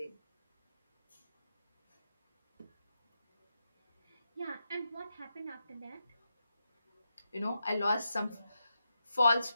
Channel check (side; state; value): both; inverted; correlation -0.86